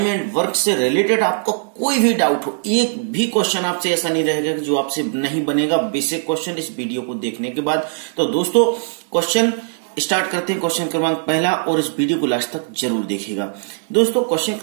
एंड वर्क से रिलेटेड आपको कोई भी डाउट हो, एक भी क्वेश्चन आपसे ऐसा नहीं रहेगा कि जो आपसे नहीं बनेगा बेसिक क्वेश्चन इस वीडियो को देखने के बाद। तो दोस्तों क्वेश्चन स्टार्ट करते हैं। क्वेश्चन क्रमांक पहला, और इस वीडियो को लास्ट तक जरूर देखिएगा। दोस्तों क्वेश्चन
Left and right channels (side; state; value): left; silent; digital silence